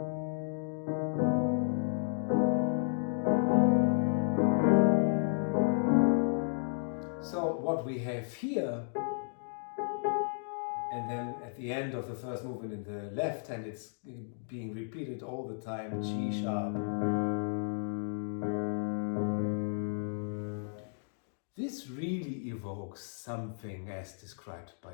So what we have here, and then at the end of the first movement in the left hand, it's being repeated all the time, G sharp. This really evokes something as described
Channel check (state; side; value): silent; right; digital silence